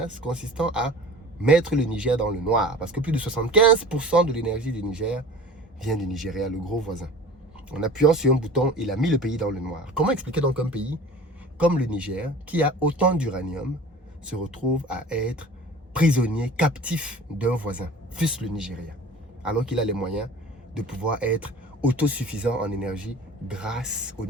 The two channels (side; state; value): both; normal; correlation 0.41